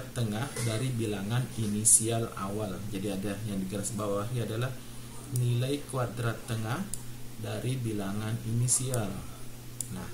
tengah dari bilangan inisial awal. Jadi ada yang di garis bawahi adalah nilai kuadrat tengah dari bilangan inisial. Nah,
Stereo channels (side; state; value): both; identical; correlation 1.00